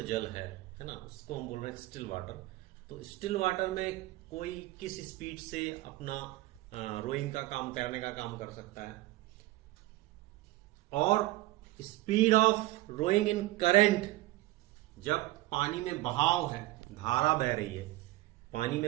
जल है ना, उसको हम बोल रहे हैं स्टिल वाटर। तो स्टिल वाटर में कोई किस स्पीड से अपना रोइंग का काम करने का काम कर सकता है। और speed of rowing in current, जब पानी में बहाव है, धारा बह रही है, पानी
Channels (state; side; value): quieter; left; 17.9 dB